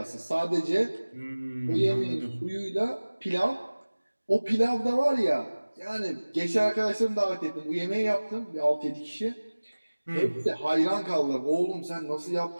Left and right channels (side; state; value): both; inverted; correlation -1.00